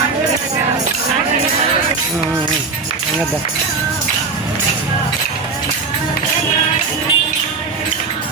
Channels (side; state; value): left; quieter; 4.4 dB